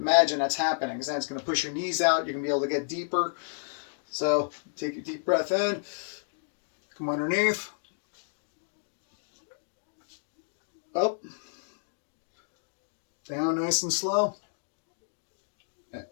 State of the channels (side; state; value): right; silent; digital silence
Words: that's happening. Because then it's going to push your knees out. You're going to be able to get deeper. So take a deep breath in. Come underneath. Up. Down nice and slow.